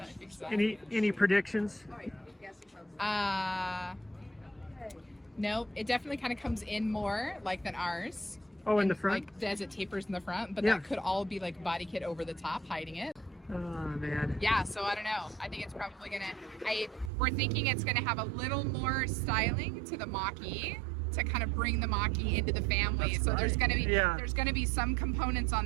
you Any predictions? No, it definitely kind of comes in more like than ours. Oh, in And, the front? Like as it tapers in the front, but Yeah. that could all be like body kit over the top hiding it. Oh man. Yeah, so I don't know. I think it's probably we're thinking it's gonna have a little more styling to the Mach-E to kind of bring the Mach-E into the family. So there's going to be there's going to be some components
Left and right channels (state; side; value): drops out; left; at 17.1 s